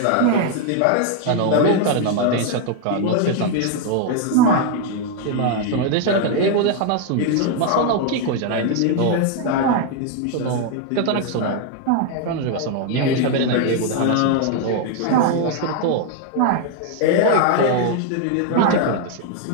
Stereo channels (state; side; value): different; both; correlation 0.00